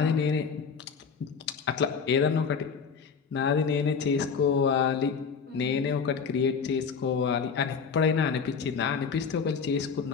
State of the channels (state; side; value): quieter; right; 5.9 dB